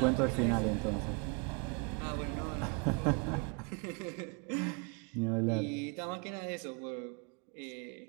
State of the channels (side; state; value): left; quieter; 33.9 dB